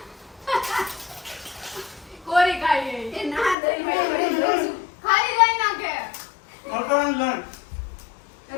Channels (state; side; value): drops out; right; at 3.6 s